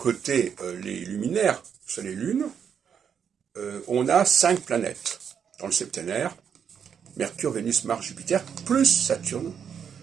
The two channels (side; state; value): left; quieter; 7.6 dB